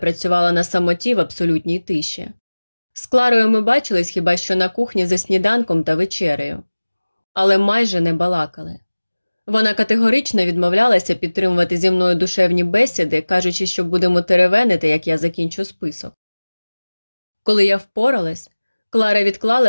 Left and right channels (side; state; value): both; inverted; correlation -1.00